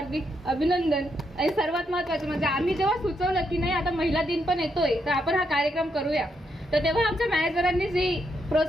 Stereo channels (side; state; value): both; normal; correlation 0.79